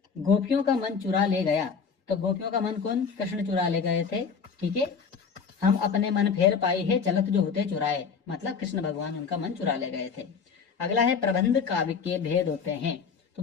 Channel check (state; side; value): quieter; right; 5.9 dB